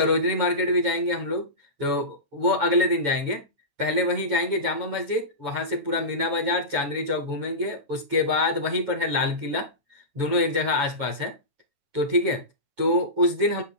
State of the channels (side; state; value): left; late; 9.2 ms